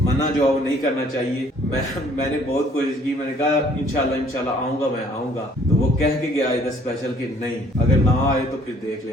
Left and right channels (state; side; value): normal; both; correlation 0.60